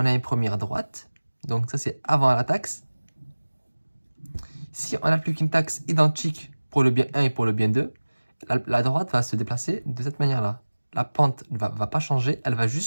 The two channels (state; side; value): inverted; both; correlation -1.00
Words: a une première droite, donc ça c'est avant la taxe. Si on applique une taxe identique pour le bien 1 et pour le bien 2, la droite va se déplacer de cette manière-là. La pente ne va pas changer, elle va